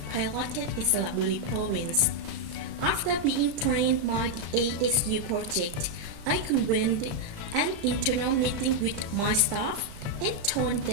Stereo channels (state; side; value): late; left; 35 ms